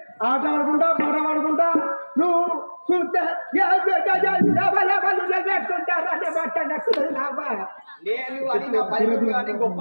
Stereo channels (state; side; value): inverted; both; correlation -1.00